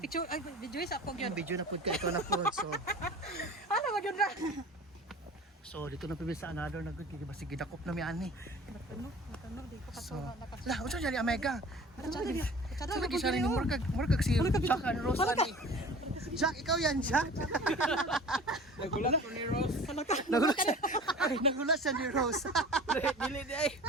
ay video sa ako yung gyud. video na pud kay ito na pud. So Ano mo gyud ra? so dito na pud sa another na good kay basi gidakop na mi ani. Matano di ko So katuwa nakas. la unsa diyan Omega? Tsada. Sa lagi siya ni murag si Jack and Rose ani. Jack, ikaw yan, Jack. Nagulat ko ni Ross. Nagulat siya. Ay, nagulat siya ni Rose. Dili di ay.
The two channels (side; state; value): both; normal; correlation 0.41